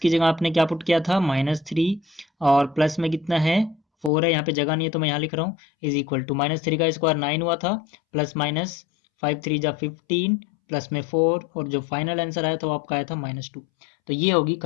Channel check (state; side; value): drops out; right; at 4.1 s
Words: जगह आपने क्या पुट किया था -3, और प्लस में कितना है 4 है, यहाँ पे जगह नहीं है तो मैं यहाँ लिख रहा हूँ, इज इक्वल टू -3 का स्क्वायर 9 हुआ था, प्लस माइनस 5 3 जा 15, प्लस में 4, और जो फाइनल आंसर आया था वो आपका आया था -2। तो ये होगी